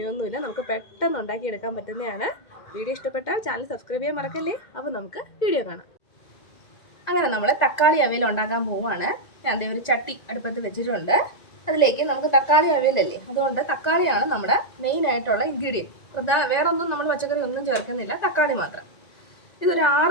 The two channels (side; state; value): right; late; 1.9 ms